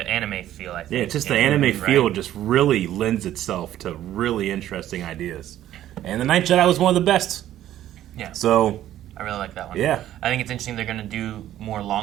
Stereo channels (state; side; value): quieter; left; 12.6 dB